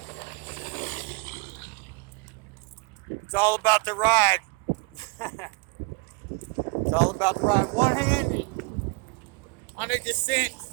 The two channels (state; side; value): quieter; left; 30.5 dB